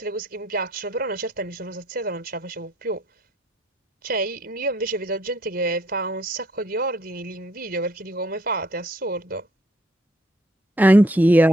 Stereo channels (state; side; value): normal; both; correlation 0.66